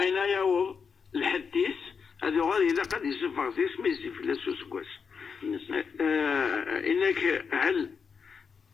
أين يعوض الحديث هذا غادي إذا قد يزف غاديس ما يزف لا سوسكواس. إنك هل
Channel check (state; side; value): quieter; right; 5.9 dB